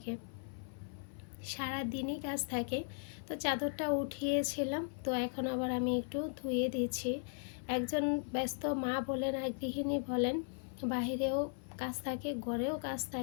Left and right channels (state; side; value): silent; right; 53 dB below the other